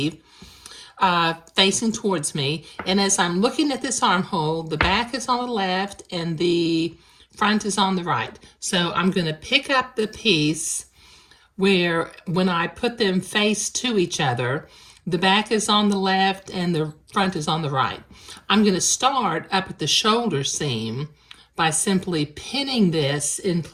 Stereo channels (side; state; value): both; identical; correlation 1.00